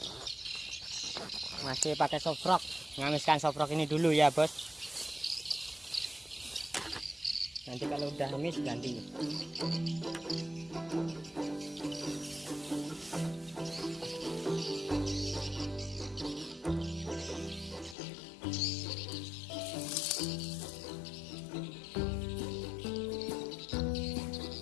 Masih pakai soft rock. Ngamiskan soft rock ini dulu ya, Bos. Nanti kalau udah hamis ganti.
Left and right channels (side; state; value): right; drops out; at 17.9 s